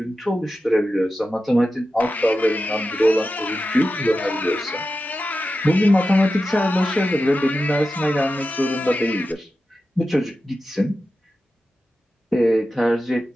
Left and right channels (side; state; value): both; normal; correlation 0.92